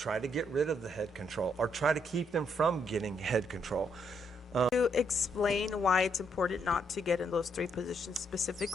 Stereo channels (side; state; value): both; normal; correlation 0.74